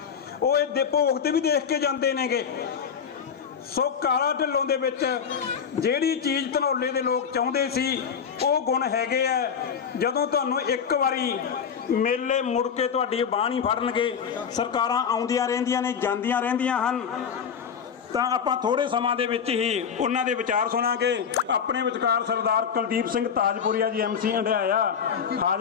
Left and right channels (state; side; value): quieter; right; 7.1 dB